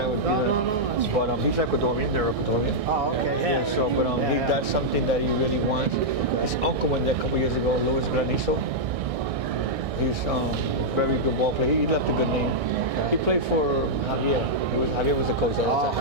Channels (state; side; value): late; left; 1.6 ms